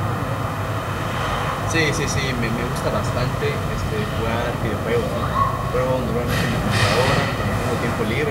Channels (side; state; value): both; identical; correlation 1.00